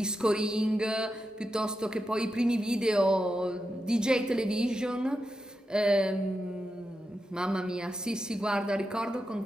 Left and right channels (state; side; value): normal; both; correlation 0.87